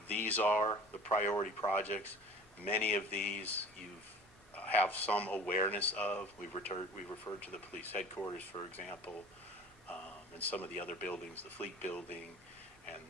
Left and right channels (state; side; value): normal; both; correlation 0.44